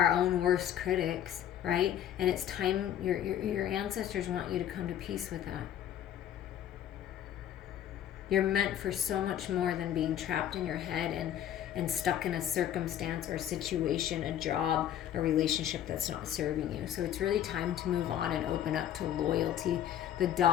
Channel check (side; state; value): right; quieter; 10.7 dB